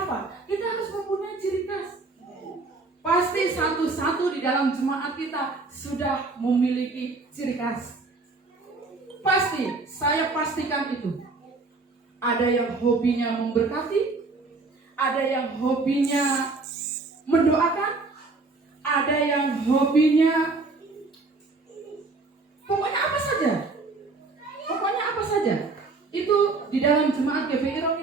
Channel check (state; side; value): quieter; left; 3.7 dB